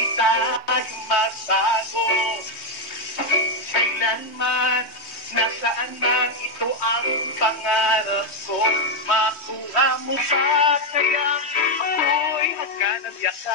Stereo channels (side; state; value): right; late; 3.2 ms